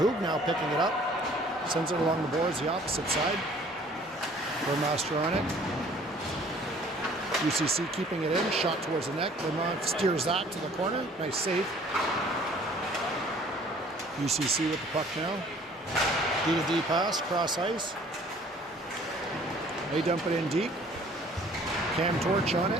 Hoog now picking it up, sends it along the boards, the opposite side. Burmaster on it. UCC keeping it in, shot towards the net. Vermont steers that to the corner. Nice save. UCC with the puck now. D-to-D pass, cross ice. They dump it in deep. Cam Torch on it.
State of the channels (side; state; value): both; normal; correlation 0.55